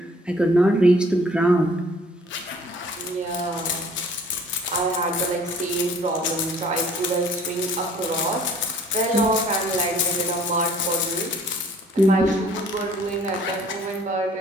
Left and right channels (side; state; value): both; normal; correlation 0.54